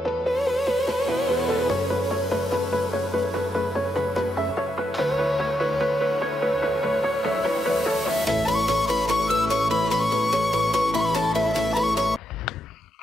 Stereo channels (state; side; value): normal; both; correlation 0.82